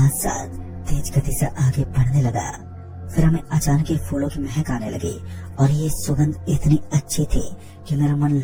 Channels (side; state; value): both; identical; correlation 1.00